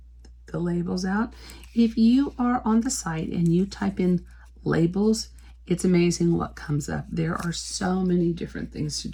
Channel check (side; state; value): both; identical; correlation 1.00